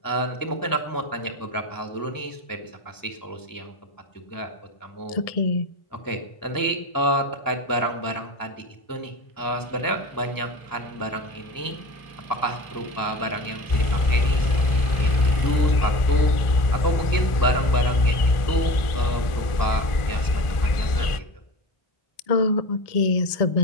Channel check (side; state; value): right; late; 1.4 ms